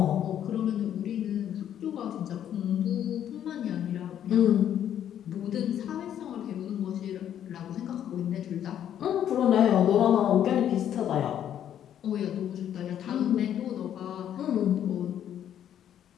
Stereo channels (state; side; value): quieter; right; 10.2 dB